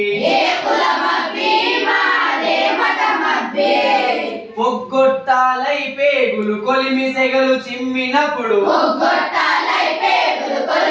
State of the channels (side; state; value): both; identical; correlation 1.00